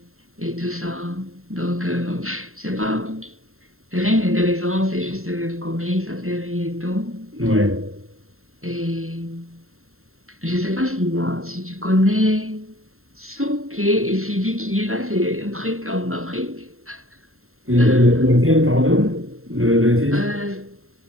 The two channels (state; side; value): late; left; 0.62 ms